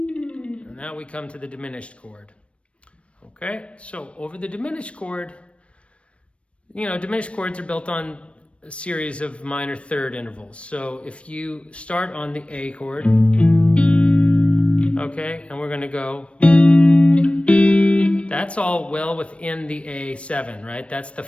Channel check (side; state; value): right; late; 0.061 ms